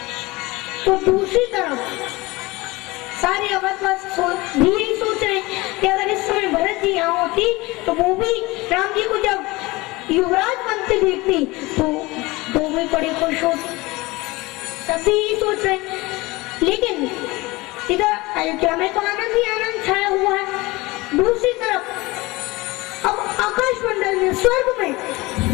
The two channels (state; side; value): quieter; right; 21.9 dB